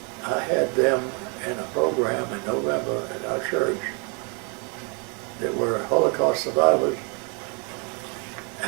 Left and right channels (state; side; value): quieter; left; 35.6 dB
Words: I had them in a program in November at our church that were Holocaust survivors